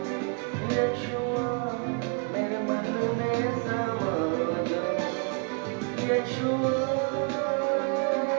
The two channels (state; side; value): quieter; left; 35.9 dB